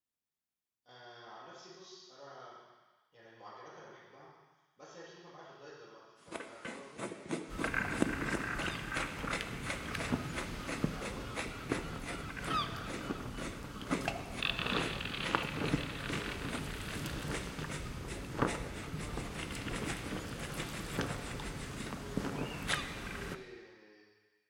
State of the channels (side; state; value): both; identical; correlation 1.00